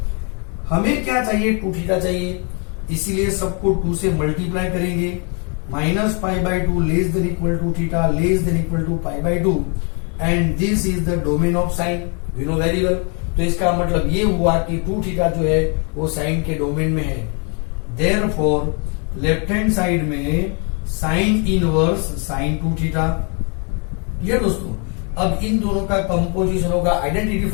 हमें क्या चाहिए, 2 theta चाहिए, इसीलिए सबको 2 से multiply करेंगे. Minus pi by 2 less than equal to theta less than equal to pi by 2. And this is the domain of sine, we know very well. तो इसका मतलब ये हुआ कि 2 थीटा जो है वो साइन के डोमेन में है. देयरफॉर लेफ्ट हैंड साइड में साइन इनवर्स साइन 2 थीटा. ये दोस्तों अब इन दोनों का कंपोजिशन होगा identity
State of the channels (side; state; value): right; quieter; 36.3 dB